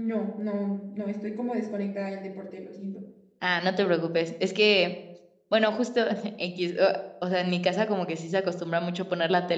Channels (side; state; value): both; identical; correlation 1.00